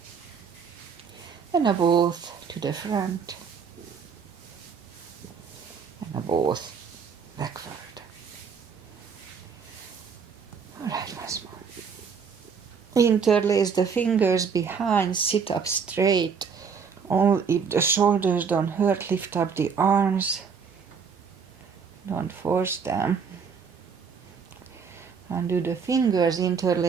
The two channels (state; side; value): quieter; left; 6.1 dB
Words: and now both to the front, and both backward. All right, once more. Interlace the fingers behind, sit up straight. Only if the shoulders don't hurt, lift up the arms. Don't force them. Undo the fingers,